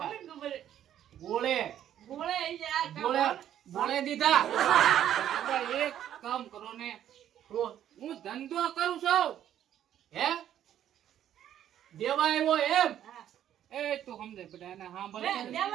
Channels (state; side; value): quieter; left; 10.9 dB